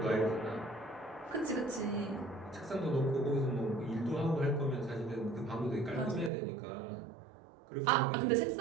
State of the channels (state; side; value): drops out; left; at 6.3 s